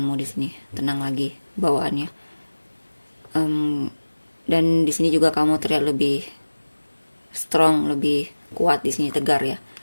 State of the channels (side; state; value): both; inverted; correlation -1.00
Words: di sini, tenang lagi bawaannya. Dan di sini juga kamu terlihat lebih strong, lebih kuat di sini, tegar ya.